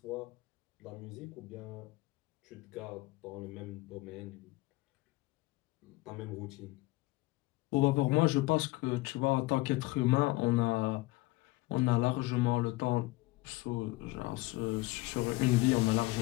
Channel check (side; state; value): right; quieter; 20.2 dB